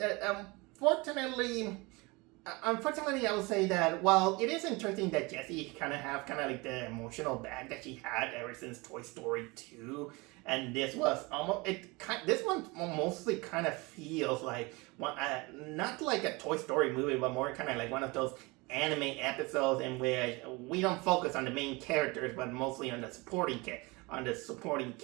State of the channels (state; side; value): quieter; left; 25.3 dB